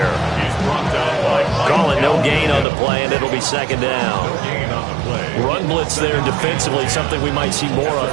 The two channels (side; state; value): left; drops out; at 2.7 s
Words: Call it no gain on the play, and it'll be second down. Run blitz there defensively, something we might see more of